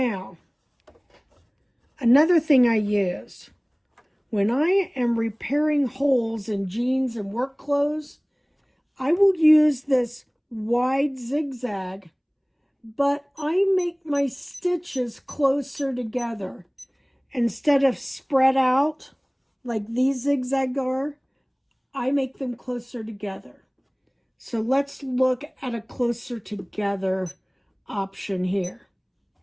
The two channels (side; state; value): both; identical; correlation 1.00